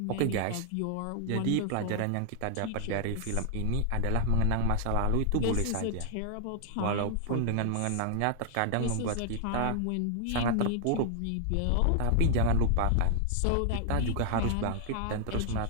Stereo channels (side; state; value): both; different; correlation 0.00